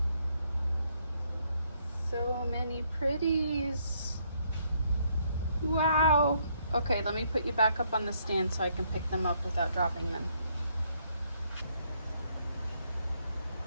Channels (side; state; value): both; inverted; correlation -0.71